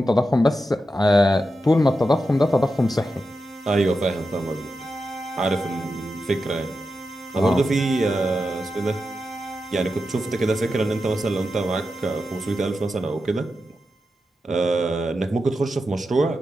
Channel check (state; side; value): normal; both; correlation 0.89